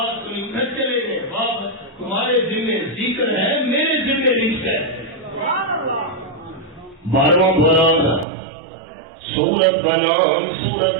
سنی گھر چلے گئے، باپ تمہارے ذمہ ذکر ہے، میرے ذمہ رزق ہے۔ 12واں پارہ سورت کا نام سورت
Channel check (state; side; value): drops out; left; at 8.2 s